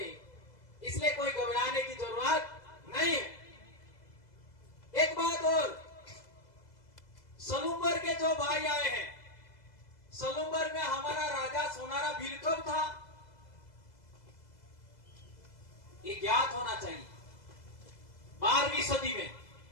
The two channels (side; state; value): right; late; 2.0 ms